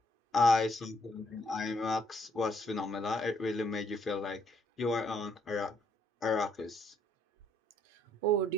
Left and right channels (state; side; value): normal; both; correlation 0.69